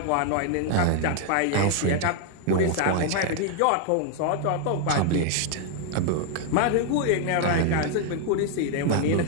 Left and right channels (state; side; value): different; both; correlation 0.00